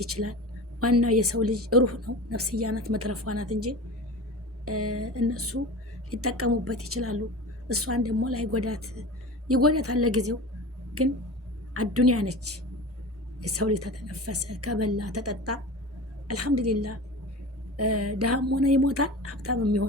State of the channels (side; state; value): both; normal; correlation 0.33